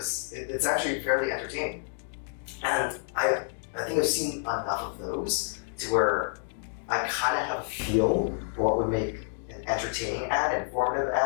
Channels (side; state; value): right; silent; digital silence